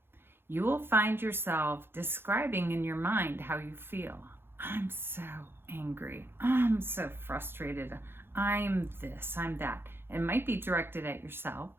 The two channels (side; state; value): left; late; 0.11 ms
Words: You will find yourself describing in your mind how you feel. I'm so angry. I'm so frustrated. I'm this, I'm that. It might be directed at yourself.